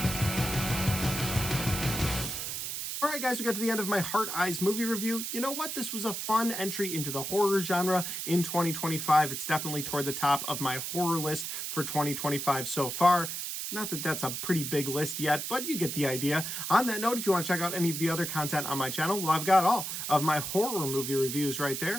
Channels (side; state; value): right; noise; hiss, 4 dB below the sound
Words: Alright guys, we got to the end of my Hard Eyes movie review. You know what? This was a fun entry into the horror genre in 2025. It's definitely toward the top of my horror list for 2025 so far. Not that that's a pretty big list yet, but you get the idea. On that note, if you want to check out any of the other content on my channel, well, I've got all of my horror movie reviews right